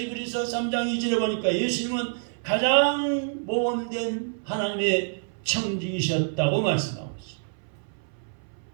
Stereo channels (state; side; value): silent; left; 58 dB below the other